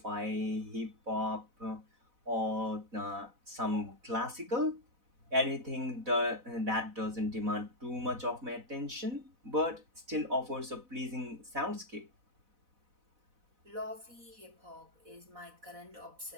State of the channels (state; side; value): late; left; 4.0 ms